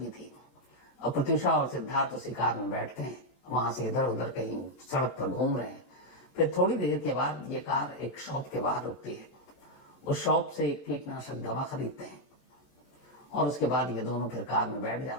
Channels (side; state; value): right; late; 18 ms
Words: थी। अब प्रत्यूषा और सिद्धार्थ उसी कार में बैठते हैं, वहां से इधर उधर कहीं सड़क पर घूम रहे हैं। फिर थोड़ी देर के बाद ये कार एक शॉप के बाहर रुकती है। उस शॉप से एक कीटनाशक दवा खरीदते हैं और उसके बाद ये दोनों फिर कार में बैठ